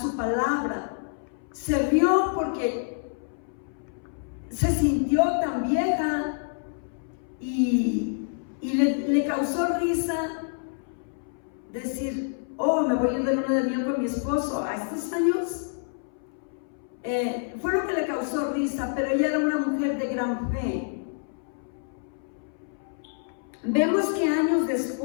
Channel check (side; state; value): right; silent; 60 dB below the other